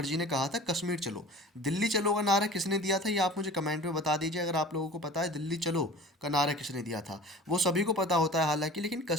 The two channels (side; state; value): both; normal; correlation 0.40